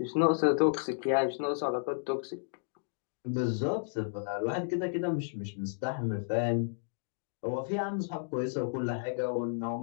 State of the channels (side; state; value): right; silent; digital silence